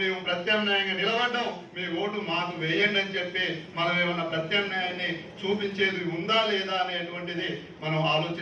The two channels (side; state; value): both; identical; correlation 1.00